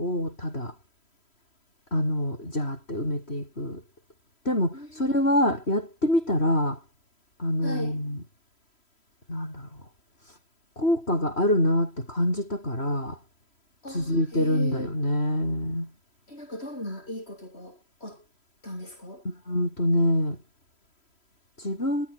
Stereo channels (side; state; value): right; late; 3.1 ms